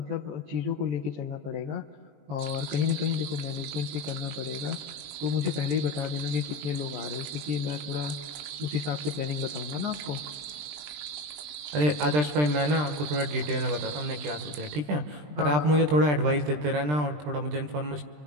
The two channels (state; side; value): late; left; 20 ms